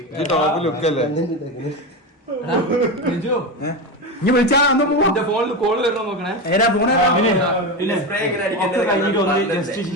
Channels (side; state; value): both; normal; correlation 0.18